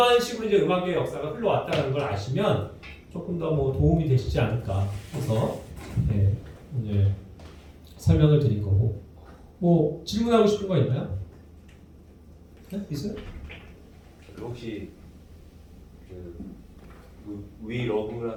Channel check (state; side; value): identical; both; correlation 1.00